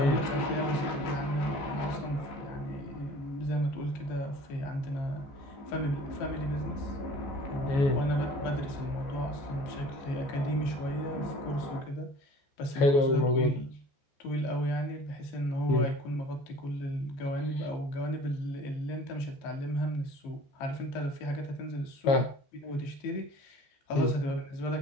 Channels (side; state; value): right; late; 14 ms